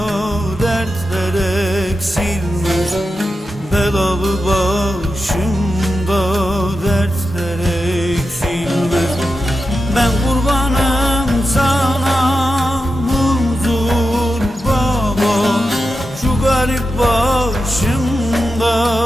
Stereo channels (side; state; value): both; normal; correlation 0.90